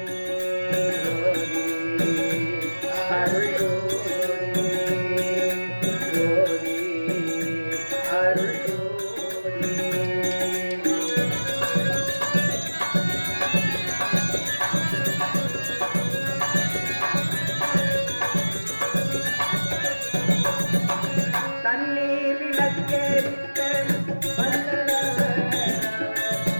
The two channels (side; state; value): both; inverted; correlation -1.00